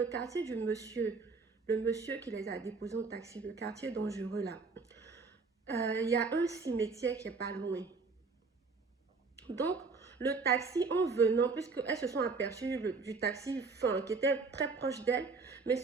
quartier du monsieur, le monsieur qui les a déposés en taxi, le quartier dangereux là, il y a un cimetière qui est pas loin. Donc, le taxi, en venant, puisqu'elles se sont aperçues du taxi qui était très proche d'elle, mais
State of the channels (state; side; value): quieter; left; 4.4 dB